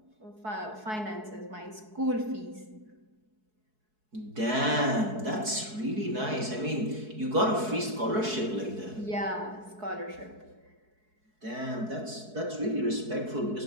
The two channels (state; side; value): late; left; 4.7 ms